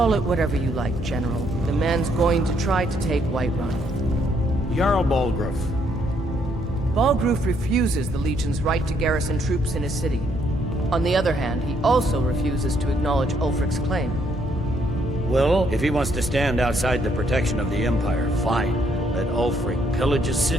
it whatever you like, General. The man's going to try to take Whiterun. Jarl Balgruuf. Balgruuf refuses the Legion's right to garrison troops in his city. On the other hand, he also refuses to acknowledge Ulfric's claim. Well, if he wants to stand outside the protection of the Empire, fine. Let Ulfric pillage his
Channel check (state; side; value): normal; both; correlation 0.70